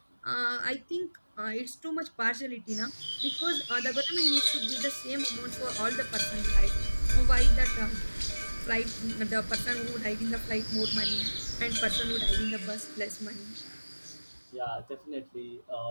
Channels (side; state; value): both; inverted; correlation -1.00